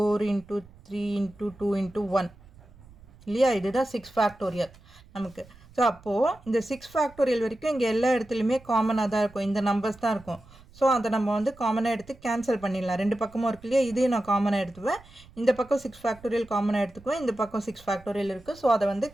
into 3 into 2 into 1 இல்லையா? இதுதான் 6 ஃபேக்டோரியல் நமக்கு. ஸோ அப்போது இந்த 6 ஃபேக்டோரியல் வரைக்கும் இங்கே எல்லா இடத்துலையுமே காமனாக தான் இருக்கும், இந்த நம்பர்ஸ் தான் இருக்கும். ஸோ அதை நம்ம வந்து காமனாக எடுத்து கேன்சல் பண்ணிடலாம். ரெண்டு பக்கமும் இருக்கு இல்லையா, இதையும் நான் காமனாக எடுத்துவேன். இந்த பக்கம் 6 ஃபேக்டோரியல் காமனாக எடுத்துக்குவேன், இந்த பக்கம் 6 ஃபேக்டோரியல் இருக்குது. ஸோ அதை வந்து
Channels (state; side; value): noise; right; rumble, 24 dB below the sound